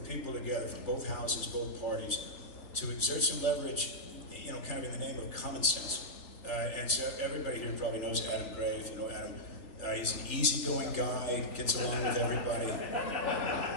people together from both houses, both parties, to exert some leverage, you know, kind of in the name of common sense. And so everybody here probably knows Adam Gray, if you know Adam. He's an easygoing guy, gets along with everybody,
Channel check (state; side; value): late; right; 3.4 ms